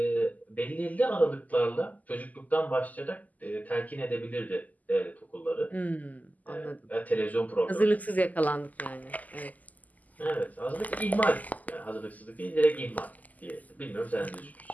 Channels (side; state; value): right; late; 0.079 ms